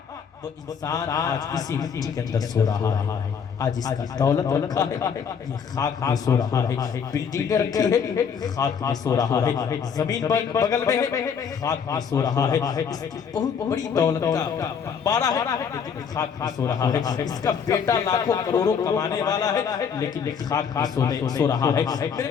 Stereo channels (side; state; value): right; quieter; 6.9 dB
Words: وہ انسان آج اسی مٹی کے اندر سو رہا ہے. آج اس کی دولت رکھا ہے, یہ خاک میں سو رہا ہے. بلڈنگیں رکھی ہے, خاک میں سو رہا ہے. زمین بغل میں ہے, خاک میں سو رہا ہے. اس کی بہت بڑی دولت کا بارہ ہے لیکن خاک میں سو رہا ہے. اس کا بیٹا لاکھوں کروڑوں کمانے والا ہے لیکن خاک میں سو رہا ہے. میرے